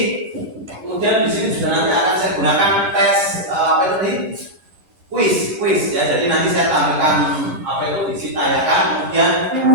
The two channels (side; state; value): left; late; 11 ms